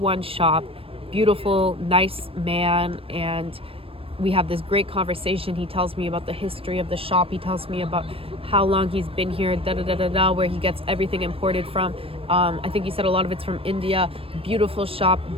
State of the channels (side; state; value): left; late; 0.27 ms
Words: shop, beautiful, nice man, and we have this great conversation. He tells me about the history of the shop. He tells me about how long he's been here, where he gets everything imported from. I think he said a lot of it's from India. Beautiful shop,